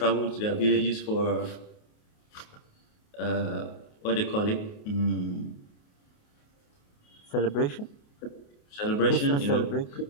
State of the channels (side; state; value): right; late; 28 ms